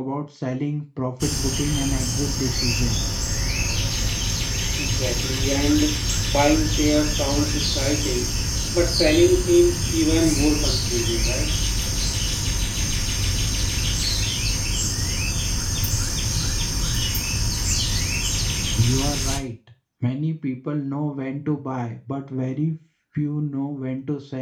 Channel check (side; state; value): both; identical; correlation 1.00